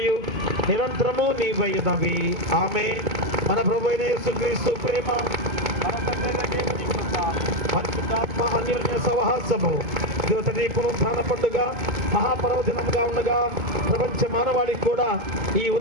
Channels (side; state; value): left; late; 2.3 ms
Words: నిరంతరము నీవైనవి. ఆమేన్. మన ప్రభువైన యేసుక్రీస్తు ప్రేమ, మన తండ్రి దేవుని కృప, పరిశుద్ధాత్మ అన్యోన్య సహవాసము నీ పునరుద్ధాన పండుగ మహాపర్వదినంగా ఉండగా ప్రపంచ మానవాళికి కూడా ఈ